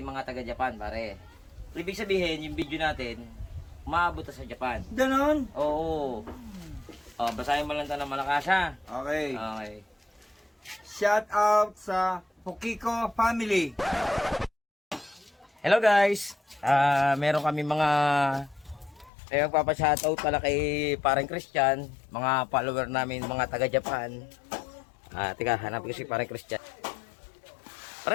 taga-Japan, pare. Ibig sabihin, yung video natin, umaabot na sa Japan. Ganon? Oo. Basahin mo lang ito ng malakas, ha? Okay. Okay. Shout out sa Pokiko family. Hello guys! Meron kami mga magpapashoutout pala kay parang Christian, mga follower namin, mga taga-Japan. Teka, hanapin ko si parang Christian.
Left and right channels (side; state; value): right; drops out; at 19.1 s